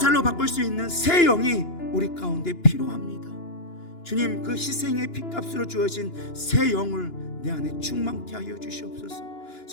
바꿀 수 있는 새 영이 우리 가운데 필요합니다. 주님, 그 희생의 핏값으로 주어진 새 영을 내 안에 충만케 하여 주시옵소서.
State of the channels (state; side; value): late; right; 2.9 ms